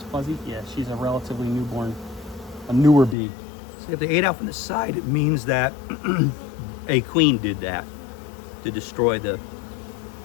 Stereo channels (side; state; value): right; drops out; at 3.2 s